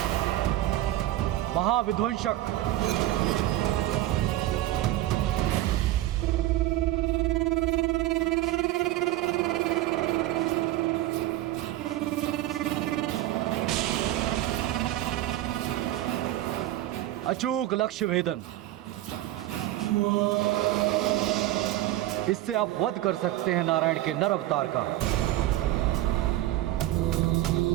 महाविध्वंसक। अचूक लक्ष्य भेदन। इससे आप वध कर सकते हैं नारायण के नर अवतार का।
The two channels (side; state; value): left; quieter; 14.9 dB